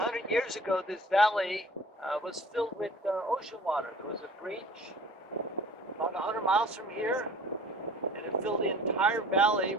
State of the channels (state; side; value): normal; both; correlation 0.47